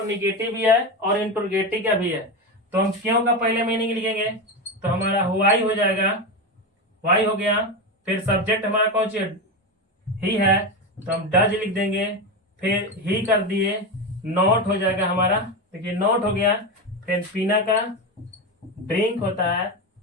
निगेटिव भी है और इंटरोगेटिव का भी है, तो हम क्यों का पहले मीनिंग लिखेंगे, तो हमारा वाई हो जाएगा, वाई हो गया। फिर सब्जेक्ट हमारा कौन सी ही है, तो हम डज लिख देंगे, फिर ही कर दिए, नॉट हो जाएगा हमारा, देखिए नॉट हो गया। फिर पीना का ड्रिंक होता है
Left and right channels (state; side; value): normal; both; correlation 0.17